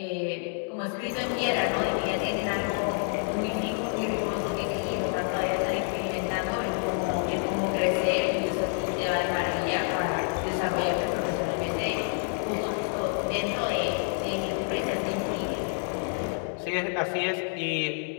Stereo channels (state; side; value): silent; right; 58 dB below the other